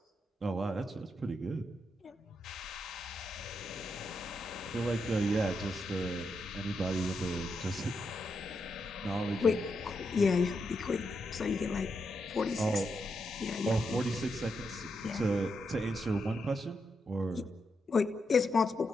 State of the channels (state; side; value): normal; both; correlation 0.83